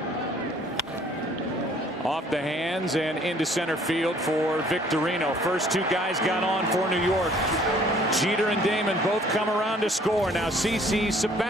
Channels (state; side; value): normal; both; correlation 0.58